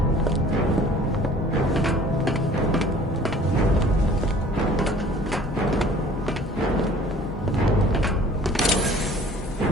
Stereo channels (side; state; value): both; normal; correlation 0.50